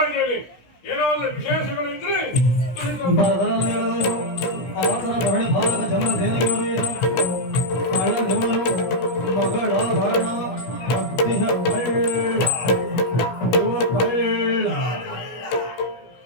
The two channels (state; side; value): late; right; 16 ms